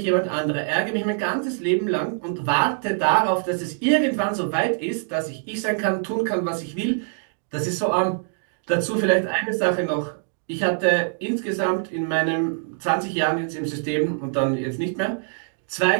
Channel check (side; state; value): left; silent; digital silence